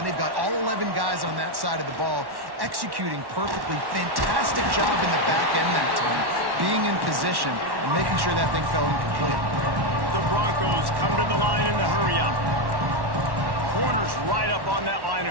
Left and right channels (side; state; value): left; late; 1.1 ms